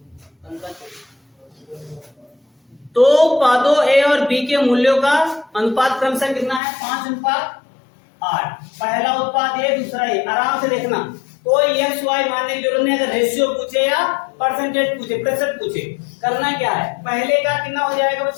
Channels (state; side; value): drops out; right; at 6.6 s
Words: तो उत्पादों ए और बी के मूल्यों का अनुपात क्रमशः कितना है? 5:8। पहला उत्पाद ए, दूसरा ए। आराम से देखना, कोई एक्स वाई मानने की जरूरत नहीं। अगर रेशियो पूछे या परसेंटेज पूछे, प्रतिशत पूछे, करना क्या है, पहले का कितना हो जाएगा